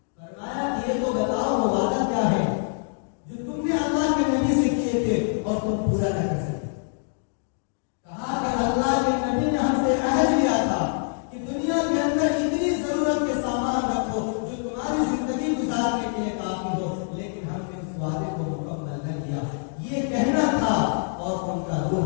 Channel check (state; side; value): silent; right; 62 dB below the other